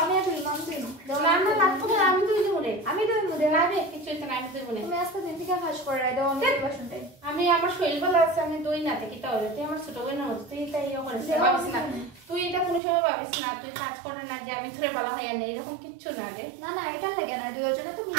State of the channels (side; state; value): left; drops out; at 12.8 s